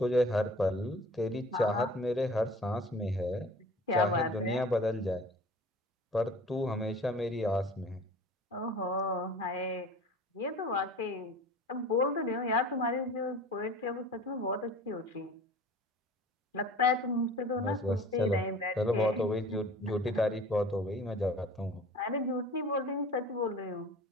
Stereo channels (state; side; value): normal; both; correlation 0.43